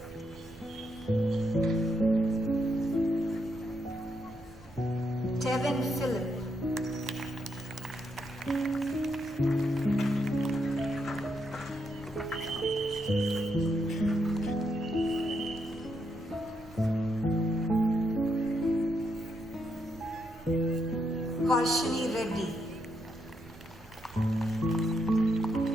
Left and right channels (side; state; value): right; noise; rumble, 21 dB below the sound